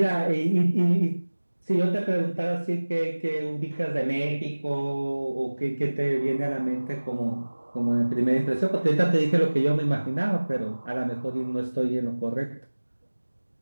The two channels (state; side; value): inverted; both; correlation -1.00